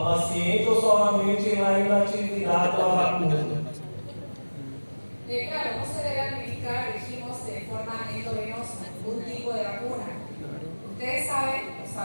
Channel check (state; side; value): inverted; both; correlation -1.00